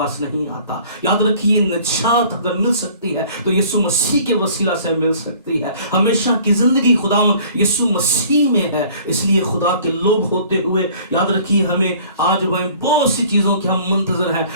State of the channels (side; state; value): both; inverted; correlation -0.51